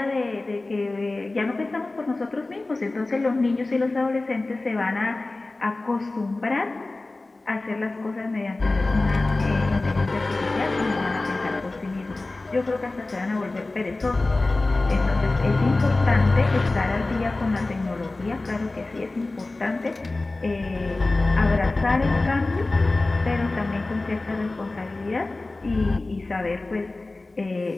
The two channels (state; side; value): quieter; right; 3.1 dB